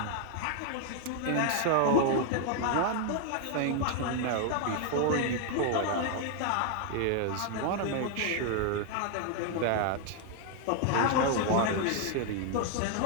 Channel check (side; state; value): both; different; correlation 0.00